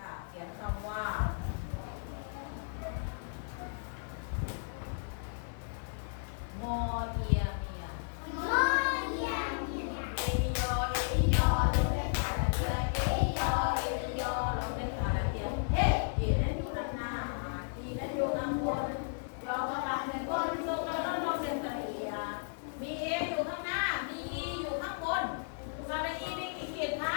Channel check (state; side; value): silent; right; digital silence